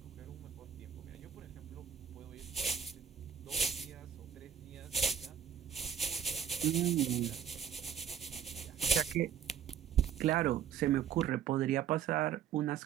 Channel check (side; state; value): left; quieter; 8.5 dB